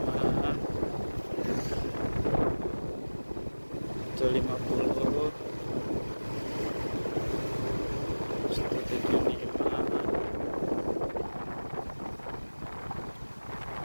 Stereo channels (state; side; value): inverted; both; correlation -1.00